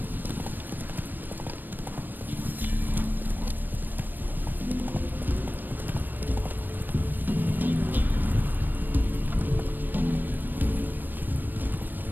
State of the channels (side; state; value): left; late; 0.088 ms